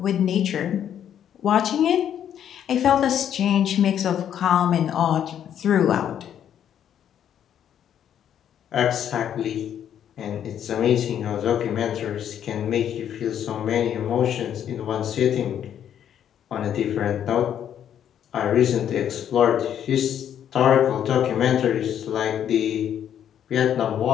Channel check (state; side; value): quieter; right; 9.6 dB